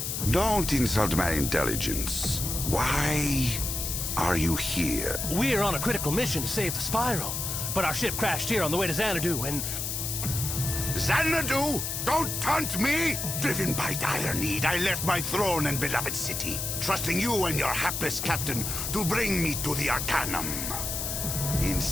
Don't insult my intelligence. Why are you here? We're on a critical mission to save the Spiral, but our ship crashed here on the way to Xanadu, and... Xanadu? Don't taunt me! Driven by dire need, I left my throne and beloved city, trusting you and your hapless captain to bring me to the Arcanum.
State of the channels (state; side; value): noise; left; hiss, 3 dB below the sound